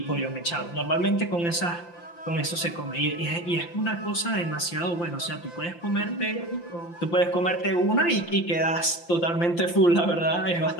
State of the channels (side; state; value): right; late; 5.8 ms